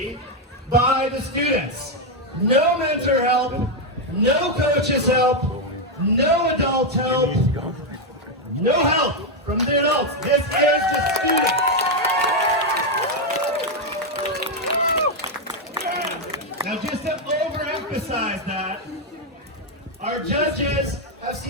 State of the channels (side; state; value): both; normal; correlation 0.03